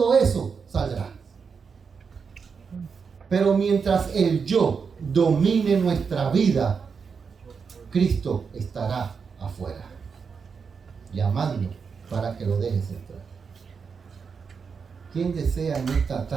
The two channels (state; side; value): quieter; left; 5.8 dB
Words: eso saldrá. Pero mientras el yo domine nuestra vida, Cristo estará afuera, llamando para que lo dejes entrar. ¿Quién desea en esta